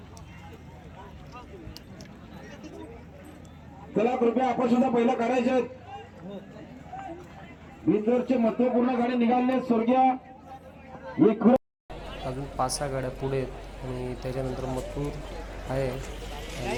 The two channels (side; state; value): both; identical; correlation 1.00